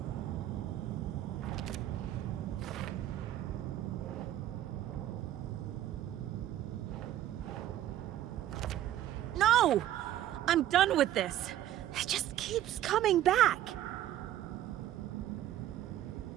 No! I'm done with this. It just keeps coming back.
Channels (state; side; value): quieter; left; 12.6 dB